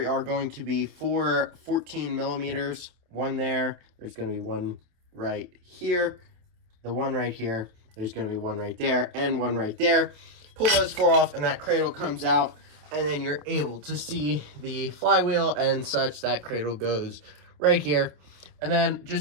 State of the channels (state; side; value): late; left; 28 ms